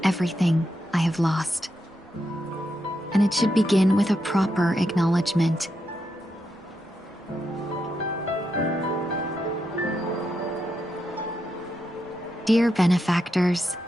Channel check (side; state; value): both; normal; correlation 0.84